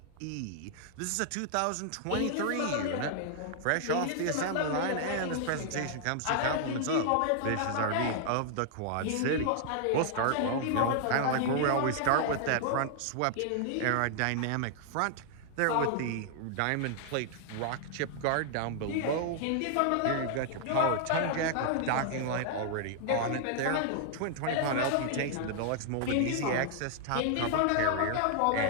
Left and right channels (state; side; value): different; both; correlation 0.00